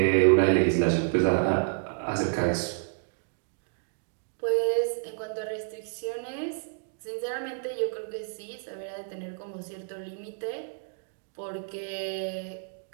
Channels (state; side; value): silent; left; digital silence